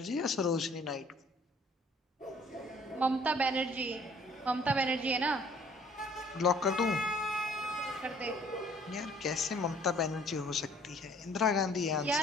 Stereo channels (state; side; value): normal; both; correlation 0.57